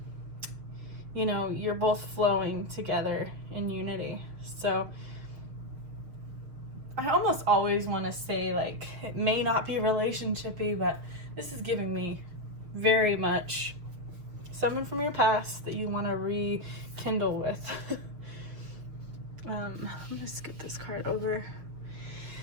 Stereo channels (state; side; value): late; left; 6.5 ms